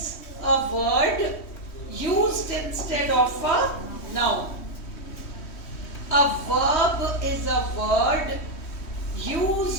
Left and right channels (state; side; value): late; right; 3.1 ms